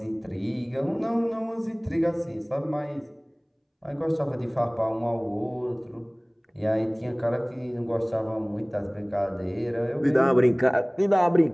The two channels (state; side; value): identical; both; correlation 1.00